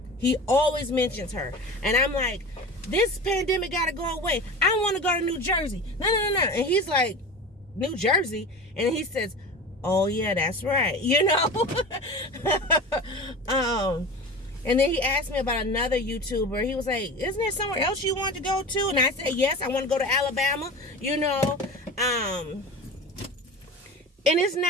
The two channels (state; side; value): normal; both; correlation 0.32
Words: He always mentions her. And I'm like, this pandemic gotta go away. I want to go to New Jersey. No. And he's like, New Jersey? And he says, oh yeah, that's right. You know? And then he asked me about another YouTuber. He was like, isn't there somewhere else you want to go to? And I said, yes, I want to go to Alabama, you know. And it's